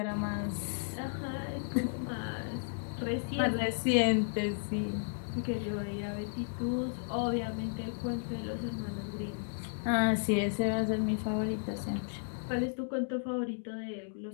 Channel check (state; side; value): silent; right; digital silence